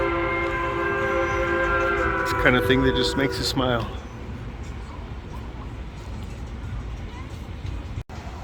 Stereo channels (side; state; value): both; identical; correlation 1.00